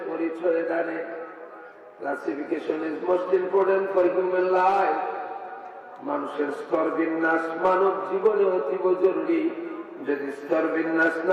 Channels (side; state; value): both; identical; correlation 1.00